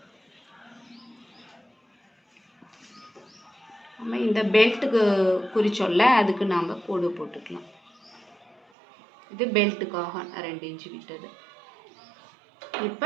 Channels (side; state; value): left; drops out; at 8.6 s